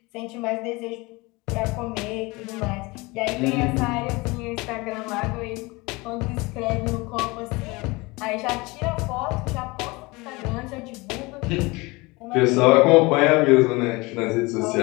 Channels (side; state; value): right; quieter; 24.1 dB